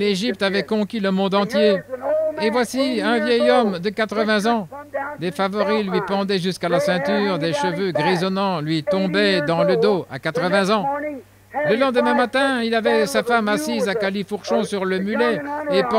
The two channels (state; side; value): identical; both; correlation 1.00